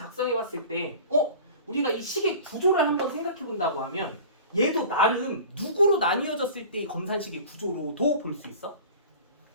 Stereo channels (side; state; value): both; inverted; correlation -0.40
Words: 봤을 때 우리가 이 식의 구조를 한번 생각해 본다고 하면 얘도 나름 누구로 나뉘어졌을 때 이 검산식의 구조로도 볼 수 있어.